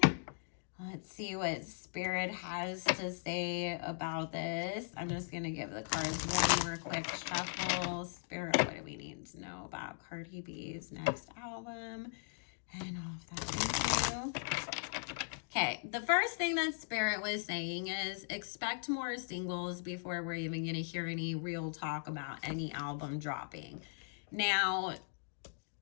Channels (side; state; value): right; silent; digital silence